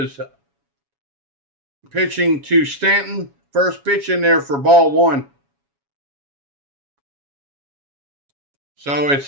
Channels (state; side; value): late; left; 7.2 ms